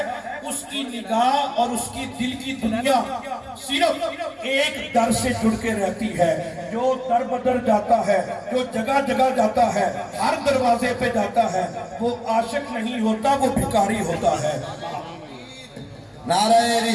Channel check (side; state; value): both; identical; correlation 1.00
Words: اس کی نگاہ اور اس کی دل کی دنیا صرف ایک در سے جڑ کے رہتی ہے۔ جو در بدر جاتا ہے، جو جگہ جگہ جاتا ہے، ہر دروازے پہ جاتا ہے، وہ عاشق نہیں ہوتا، وہ بھکاری ہوتا ہے۔ نعرہ